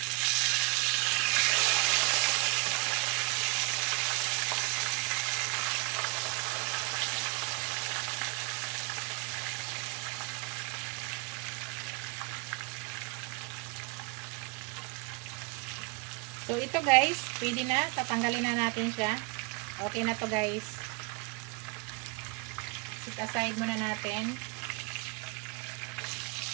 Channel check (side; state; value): left; quieter; 29.5 dB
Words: So, So, ito guys, pwede na. Tatanggalin na natin siya. Okay na to guys. Set aside muna natin.